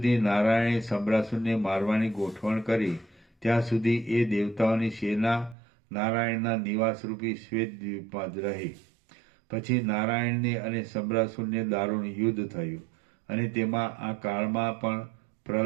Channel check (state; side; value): drops out; left; at 5.6 s